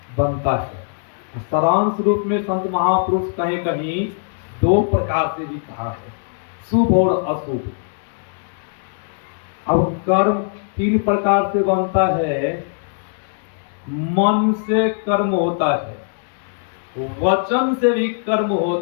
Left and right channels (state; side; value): silent; right; digital silence